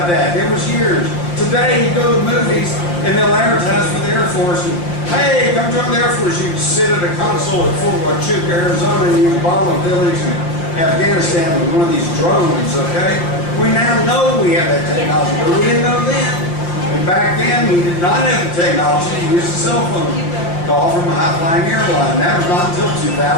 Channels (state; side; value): late; right; 5.7 ms